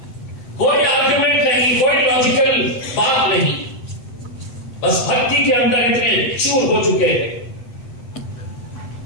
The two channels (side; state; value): right; late; 8.2 ms